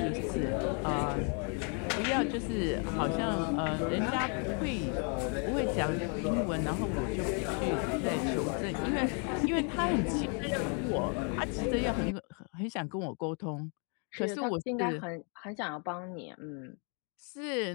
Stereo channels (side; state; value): right; quieter; 39.2 dB